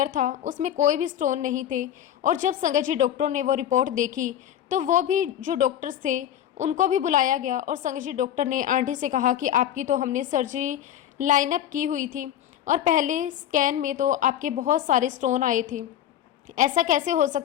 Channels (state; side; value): quieter; right; 10.8 dB